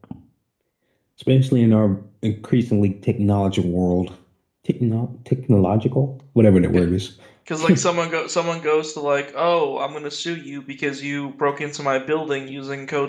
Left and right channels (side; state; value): both; identical; correlation 1.00